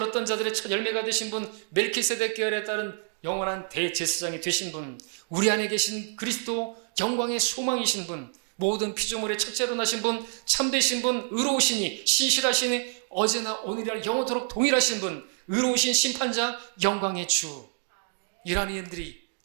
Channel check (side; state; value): left; silent; 60 dB below the other